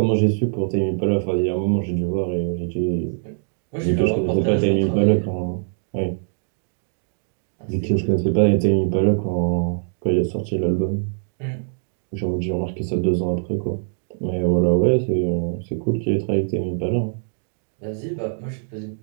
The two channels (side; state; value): left; silent; digital silence